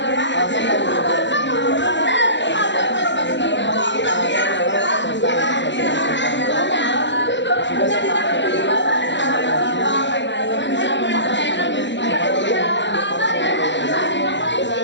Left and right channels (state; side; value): late; right; 0.53 ms